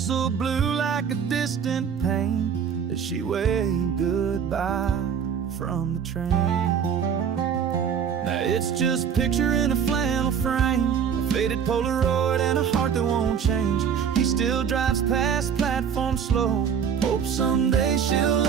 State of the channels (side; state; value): left; quieter; 7.5 dB